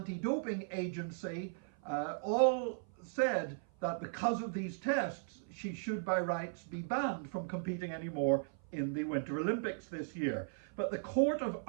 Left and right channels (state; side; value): silent; left; 53 dB below the other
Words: Agency all said that because of these tests, she should by rights be banned from competing anymore in the Winter Olympics this year. But the Court of